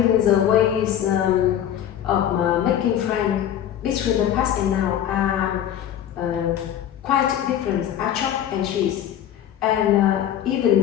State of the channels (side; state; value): right; quieter; 10.5 dB